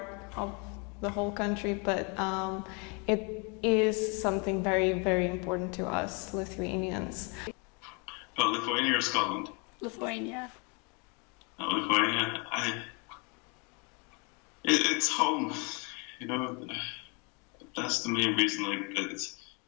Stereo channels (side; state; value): right; quieter; 33.1 dB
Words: of the whole country, but it is something very, very important to us Lithuanians. But Lithuania or Scotland? Lithuania. Lithuania, it's home, you know. That's the main reason. Like it's